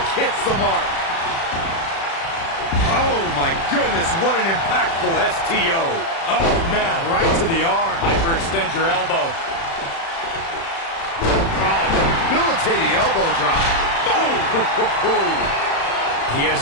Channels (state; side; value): late; right; 36 ms